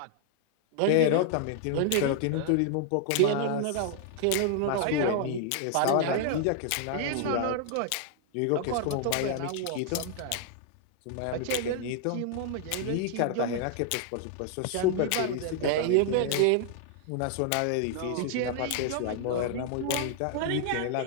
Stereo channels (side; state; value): both; different; correlation 0.00